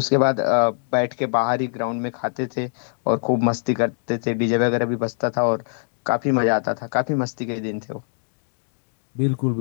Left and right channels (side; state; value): right; silent; digital silence